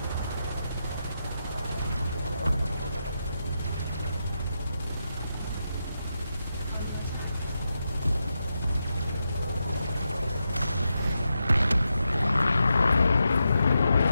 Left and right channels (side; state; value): both; inverted; correlation -0.87